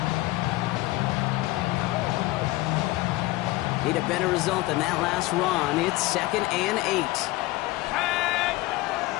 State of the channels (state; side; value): quieter; right; 19.5 dB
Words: Need a better result than that last run. It's 2nd and 8.